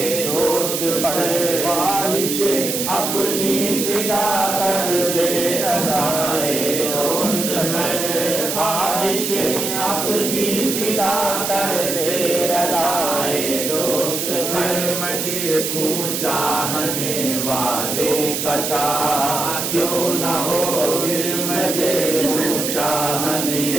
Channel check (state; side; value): noise; right; hiss, 2 dB below the sound